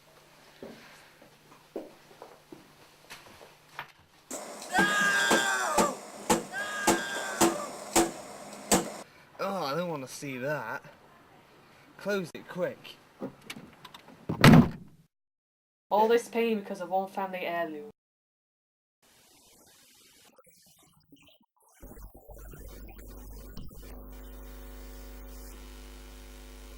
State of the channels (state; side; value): identical; both; correlation 1.00